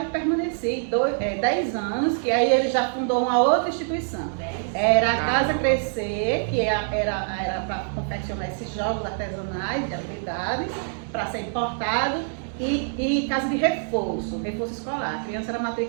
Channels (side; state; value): left; silent; 62 dB below the other